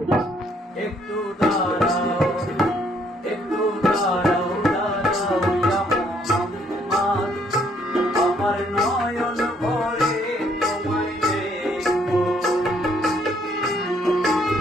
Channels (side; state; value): both; normal; correlation 0.67